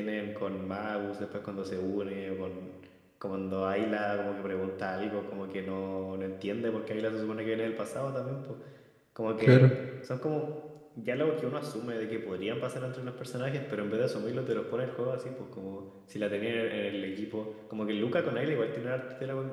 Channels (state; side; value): identical; both; correlation 1.00